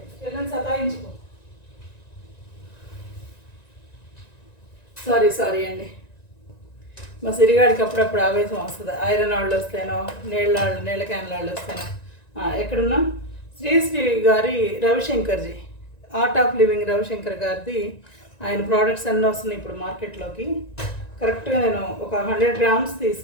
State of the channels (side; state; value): right; late; 1.9 ms